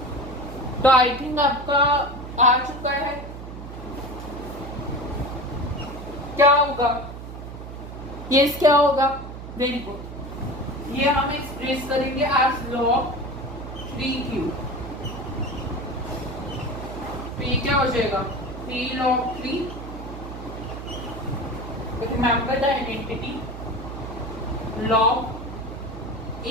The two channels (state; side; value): noise; right; hum, 10 dB below the sound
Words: तो आई थिंक आपका आ चुका है। क्या होगा? यस क्या होगा? Very good. ये हम एक्सप्रेस करेंगे एज log 3 क्यूब। तो ये क्या हो जाएगा? 3 log 3। Remember the identity log